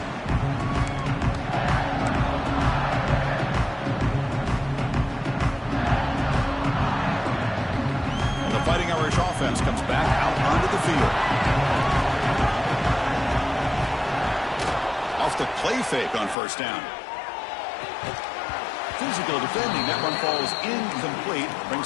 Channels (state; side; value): drops out; right; at 16.4 s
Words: And the Fighting Irish offense comes back out onto the the field. Off the play fake on first down. Physical defending. That one falls incomplete.